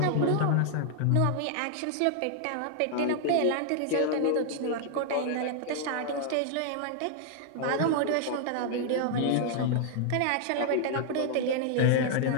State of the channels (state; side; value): different; both; correlation 0.00